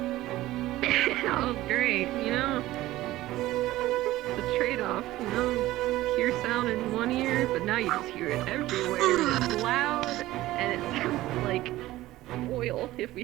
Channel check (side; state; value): left; quieter; 16.4 dB